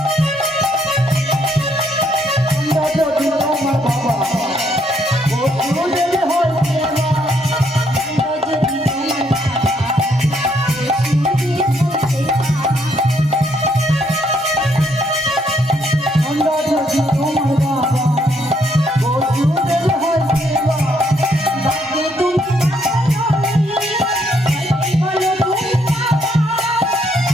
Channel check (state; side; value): normal; both; correlation 0.71